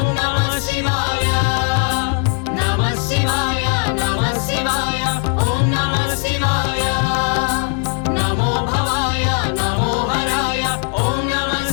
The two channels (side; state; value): right; quieter; 37.5 dB